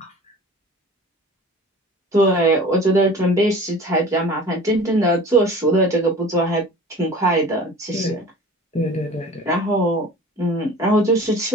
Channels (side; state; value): both; normal; correlation 0.42